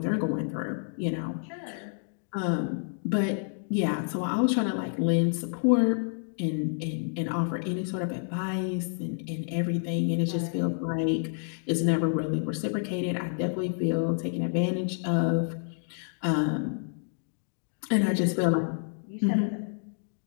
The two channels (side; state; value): right; silent; digital silence